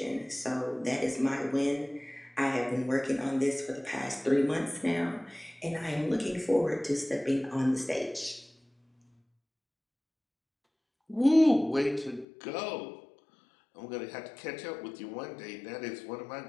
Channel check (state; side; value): drops out; right; at 12.2 s